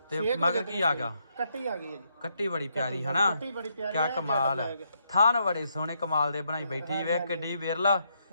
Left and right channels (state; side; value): inverted; both; correlation -0.77